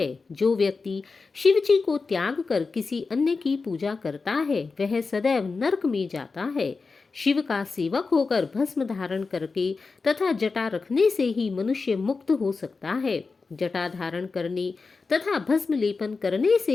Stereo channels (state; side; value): quieter; right; 4.3 dB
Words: जो व्यक्ति शिव जी को त्याग कर किसी अन्य की पूजा करता है वह सदैव नरक में जाता है। शिव का सेवक होकर भस्म धारण करके तथा जटा रखने से ही मनुष्य मुक्त हो सकता है। जटा धारण करने तथा भस्म लेपन करने से